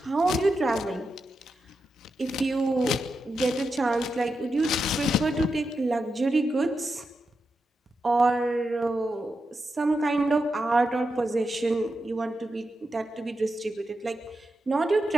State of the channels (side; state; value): both; normal; correlation 0.87